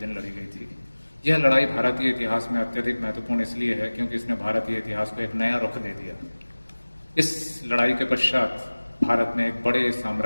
लड़ी गई थी। यह लड़ाई भारतीय इतिहास में अत्यधिक महत्वपूर्ण इसलिए है क्योंकि इसने भारतीय इतिहास को एक नया रुख दे दिया। इस लड़ाई के पश्चात भारत में एक बड़े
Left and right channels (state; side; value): inverted; both; correlation -1.00